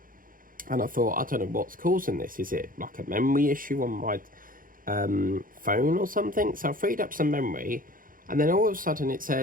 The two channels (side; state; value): left; late; 0.40 ms